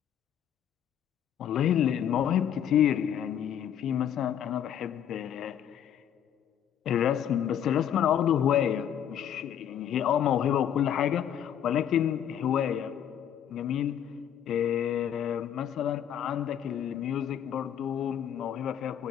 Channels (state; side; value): quieter; right; 9.6 dB